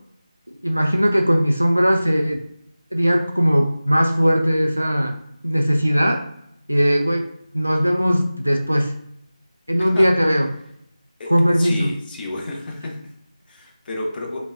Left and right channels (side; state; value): both; inverted; correlation -0.98